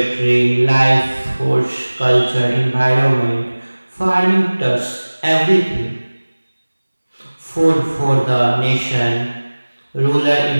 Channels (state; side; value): inverted; both; correlation -1.00